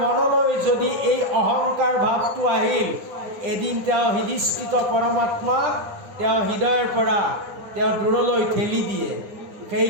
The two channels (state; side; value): late; left; 9.8 ms